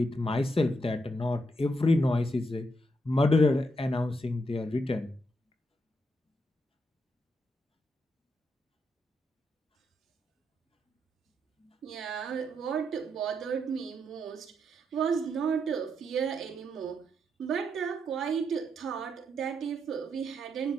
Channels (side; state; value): both; normal; correlation 0.80